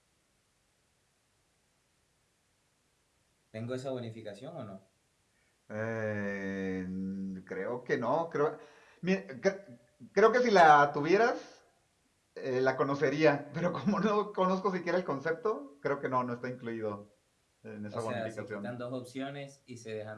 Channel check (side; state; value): both; identical; correlation 1.00